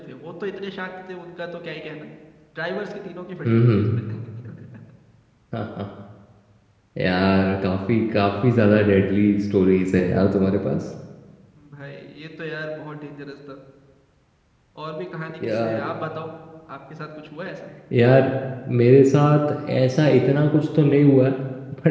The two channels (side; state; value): both; identical; correlation 1.00